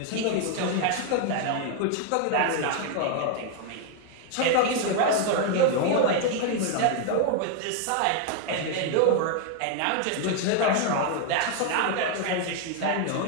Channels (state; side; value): different; both; correlation 0.01